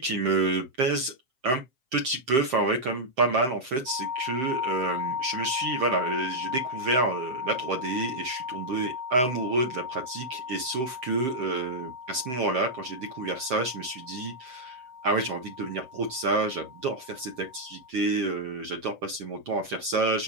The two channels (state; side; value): late; left; 7.7 ms